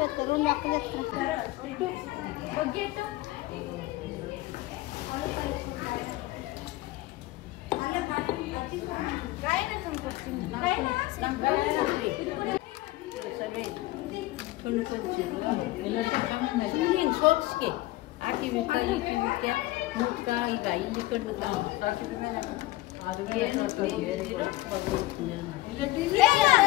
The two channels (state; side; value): quieter; right; 18.1 dB